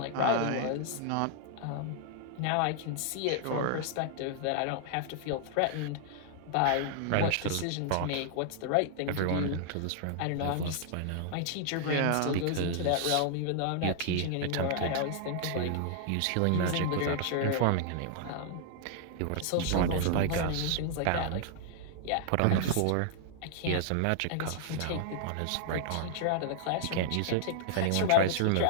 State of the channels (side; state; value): both; different; correlation -0.01